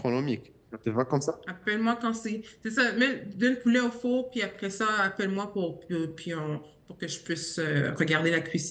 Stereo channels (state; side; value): identical; both; correlation 1.00